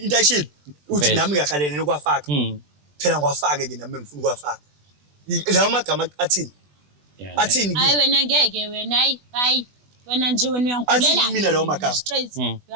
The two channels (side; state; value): left; late; 20 ms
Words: into ayishilo uthi Vele. nami ngiyakhalene nokwafaka phela ngiwafake ke nami ngifuna ukwafaka lawo magama athini Yeah, athini hayi wena ngeke wena hayi wena nje wena Athi uyangulela mina lawo magama. straight